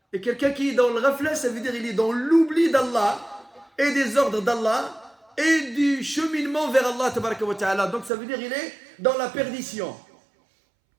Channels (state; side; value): drops out; left; at 8.1 s